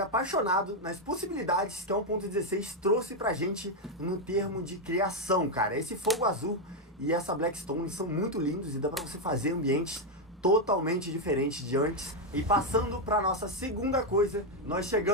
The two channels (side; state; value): both; normal; correlation 0.03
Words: apaixonado nas possibilidades que a 1.16 trouxe pra gente no termo de criação, cara. Esse fogo azul e essa Blackstone são muito lindos e dá pra você fazer ambientes totalmente diferentes de antes. E passando pra nossa segunda coisa, nós